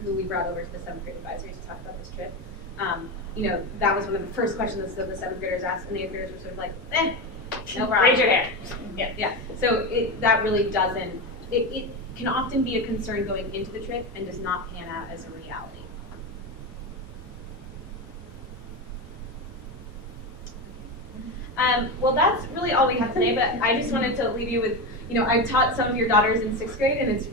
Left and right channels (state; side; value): normal; both; correlation 0.18